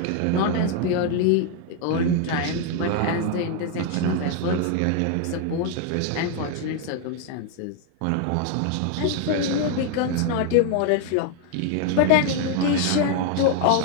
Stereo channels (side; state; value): both; different; correlation 0.01